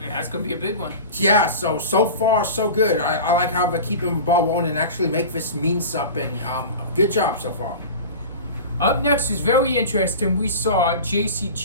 that's going to be a big one. Yeah, so far, so good. I like how they're keeping the ball rolling and actually make this mean something. Good job so far. Up next is very interesting. We saw JC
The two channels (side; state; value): both; inverted; correlation -0.33